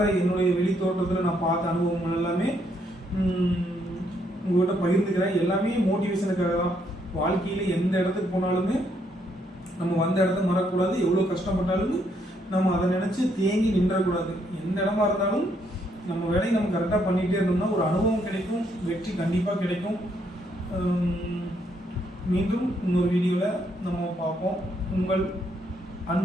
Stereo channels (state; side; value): normal; both; correlation 0.73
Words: என்னுடைய வெளித்தோட்டத்தில் நான் பார்த்த அனுபவங்கள் எல்லாமே உங்கள்கிட்ட பகிர்ந்துக்கிறேன். எல்லாமே மோட்டிவேஷனுக்காக தான். வாழ்க்கையில் எந்த இடத்துக்கு போனாலுமே நம்ம வந்த இடத்த மறக்கக்கூடாது. எவ்வளோ கஷ்டப்பட்டாலும் நம்ம அதை நினச்சி தேங்கி நின்றக்கூடாது. எந்த இடமா இருந்தாலும் நம்ம வேலையை நம்ம கரெக்டாக பண்ணிகிட்டே இருந்தோம்னா ஒரு அனுபவம் கிடைக்கும், வெற்றி கண்டிப்பாக கிடைக்கும். மீண்டும் இன்னொரு வீடியோவில் நம்ம பார்ப்போம். உங்கள்